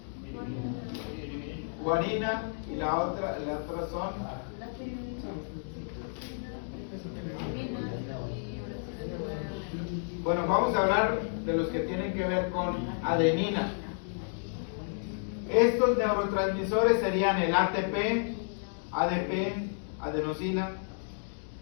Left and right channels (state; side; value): silent; right; digital silence